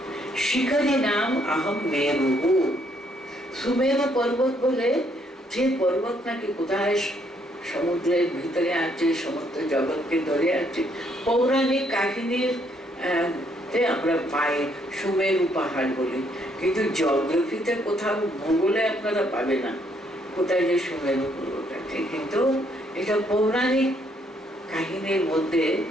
শিখরী নাম আহম মেরু, সুমেরু পর্বত বলে যে পর্বত নাকি কোথায় সমুদ্রের ভিতরে আছে, সমুদ্র জগৎকে ধরে আছে। পৌরাণিক কাহিনীর আমরা পাই সুমেরু পাহাড় বলে, কিন্তু জিওগ্রাফিতে কোথাও ভূগোলে আপনারা পাবে না কোথায় যে সুমেরু পর্বত আছে, কিন্তু এটা পৌরাণিক কাহিনীর মধ্যে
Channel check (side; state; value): both; normal; correlation 0.70